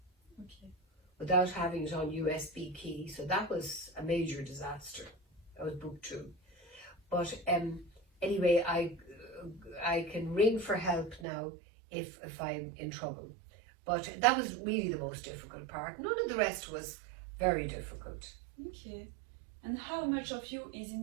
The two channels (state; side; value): drops out; left; at 11.2 s